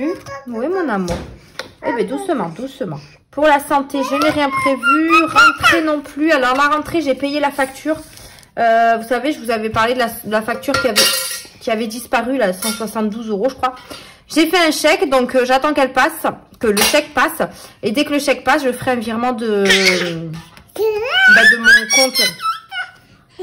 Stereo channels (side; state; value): both; identical; correlation 1.00